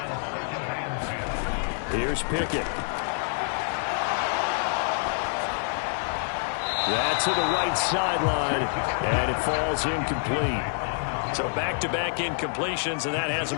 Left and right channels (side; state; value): right; silent; digital silence